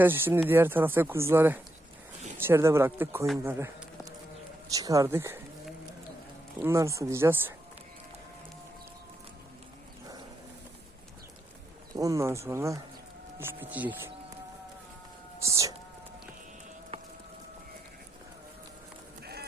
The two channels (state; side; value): normal; both; correlation 0.82